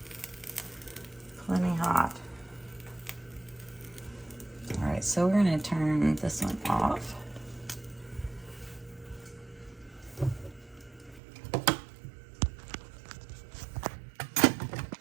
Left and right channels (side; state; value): left; drops out; at 11.2 s